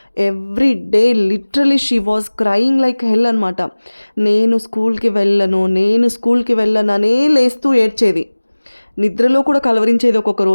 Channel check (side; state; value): both; inverted; correlation -1.00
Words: Every day literally she was crying like హెల్ అనమాట. నేను స్కూల్‌కి వెళ్ళననే లేస్తూ ఏడ్చేది. నిద్రలో కూడా కలవరించేది ఒక్కొక్క